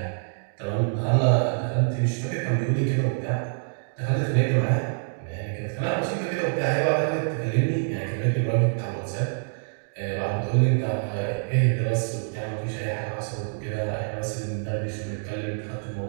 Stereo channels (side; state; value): left; silent; digital silence